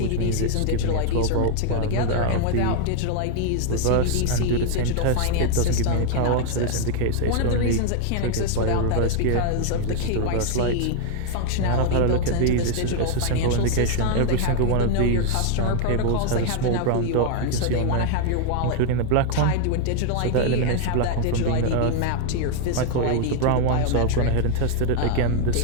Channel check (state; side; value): different; both; correlation 0.00